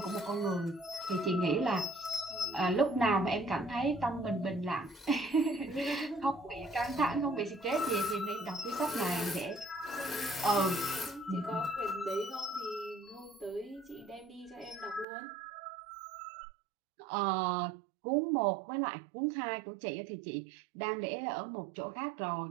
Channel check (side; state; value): left; drops out; at 15.1 s